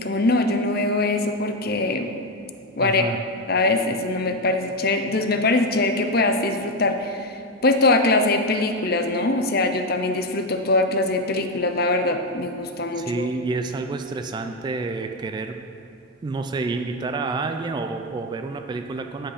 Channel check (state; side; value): normal; both; correlation 0.09